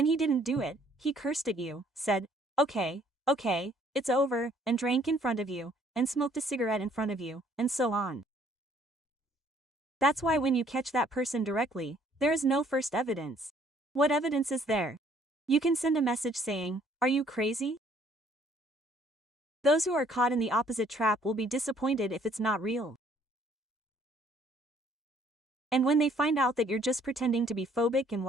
he didn't do it, he cursed at you, said, okay, it's over, and drank in front of you, and smoked a cigarette in front of you, and so on. That's why when you catch that person directly, there is no first evidence. What evidence is there? You can send a message saying, are you crazy? Those who are caught in the opposite trap will be disappointed if it's not real. And when they find out that you're just pretending to be phobic and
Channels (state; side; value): normal; both; correlation 0.62